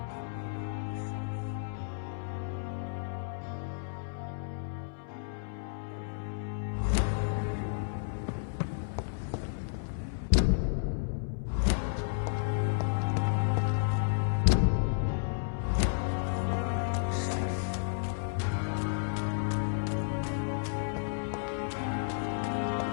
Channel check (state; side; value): silent; right; 56 dB below the other